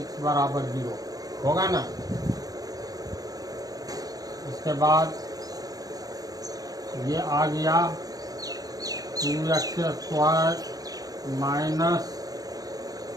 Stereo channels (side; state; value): left; late; 0.18 ms